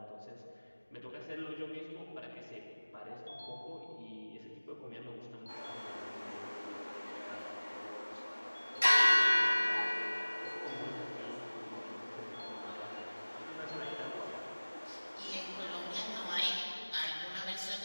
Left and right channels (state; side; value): inverted; both; correlation -1.00